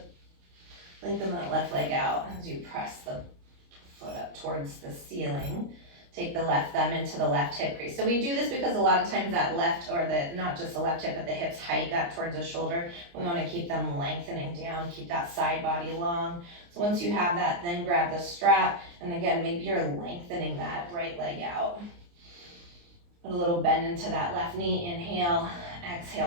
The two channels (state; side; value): late; left; 29 ms